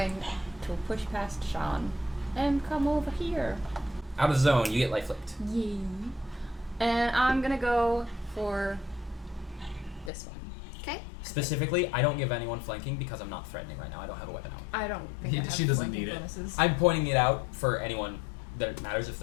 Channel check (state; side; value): drops out; right; at 10.1 s